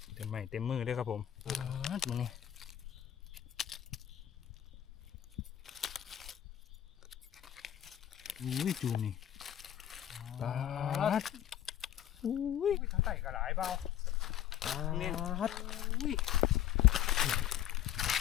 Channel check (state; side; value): quieter; right; 11.1 dB